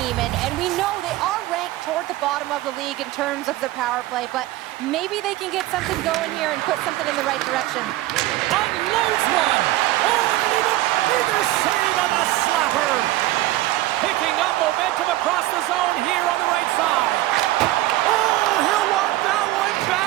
and we know they are ranked toward the bottom of the league in terms of their power play, but maybe they can get something going here and put something in the right direction. Unloads one! Oh, and even bigger save on the slapper! Picking up momentum across the zone here on the right side. Oh, he'll want that one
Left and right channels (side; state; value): left; quieter; 16.6 dB